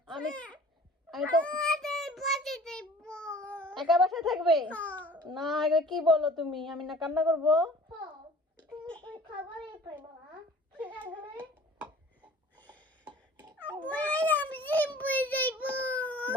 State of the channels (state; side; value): normal; both; correlation 0.47